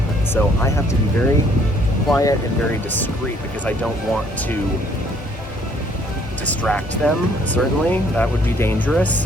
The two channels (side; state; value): both; normal; correlation 0.63